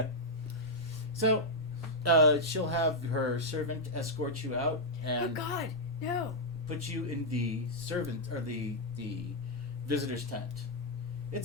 So, she'll have her servant escort you out Oh and God, no. put you in the the visitor's tent.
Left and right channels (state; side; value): normal; both; correlation -0.05